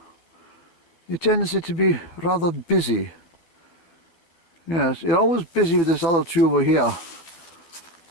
tendency to be rather busy. Yes, you're always busy with this other two over here.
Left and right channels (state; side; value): late; right; 12 ms